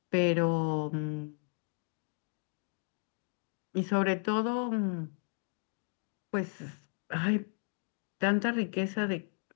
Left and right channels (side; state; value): right; silent; 55 dB below the other